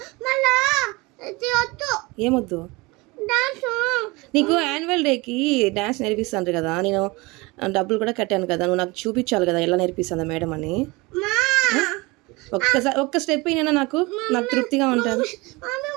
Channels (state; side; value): quieter; left; 24.3 dB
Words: ఏమొద్దు? నీకు యాన్యువల్ డేకి డాన్స్ నేర్పిస్తాను కదా, నేను డబ్బులు కూడా కట్టాను కదా, నువ్వు నాకు చూపించాలి కదా ఎలా నేర్పిస్తుందా మేడం అని. ఒక్క స్టెప్ అయినా నాకు తృప్తిగా ఉంటుంది.